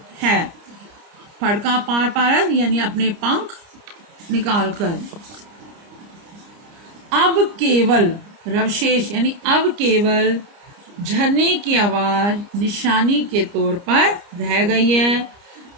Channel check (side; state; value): left; late; 29 ms